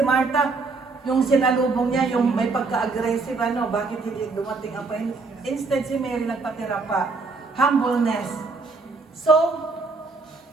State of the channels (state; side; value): quieter; left; 4.0 dB